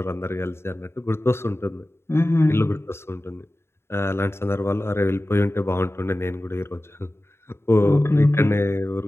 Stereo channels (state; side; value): late; right; 0.12 ms